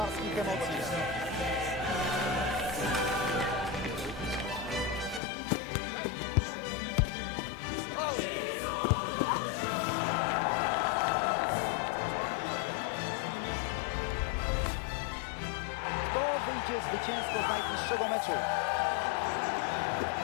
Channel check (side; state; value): right; drops out; at 5.2 s